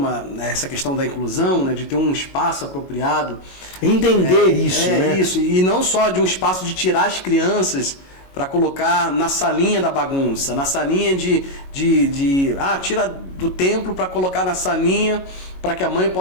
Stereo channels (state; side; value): late; right; 22 ms